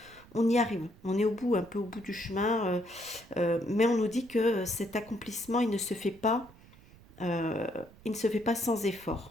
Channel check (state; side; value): noise; right; rumble, 23 dB below the sound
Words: on y arrive, on est au bout, un peu au bout du chemin. Mais on nous dit que cet accomplissement, euh, il ne se fait pas sans